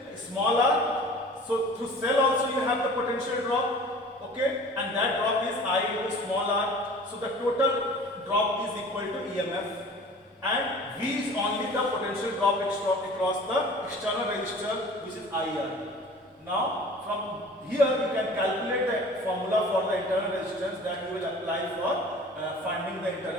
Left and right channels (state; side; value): normal; both; correlation 0.44